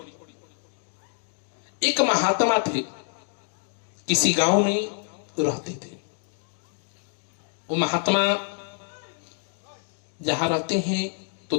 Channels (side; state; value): right; silent; digital silence